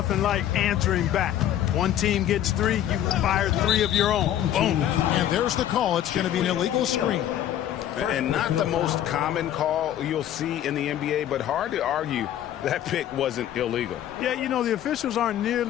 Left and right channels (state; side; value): quieter; right; 11.4 dB